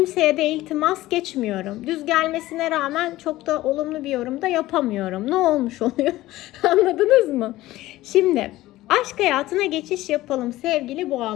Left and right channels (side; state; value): right; quieter; 16.7 dB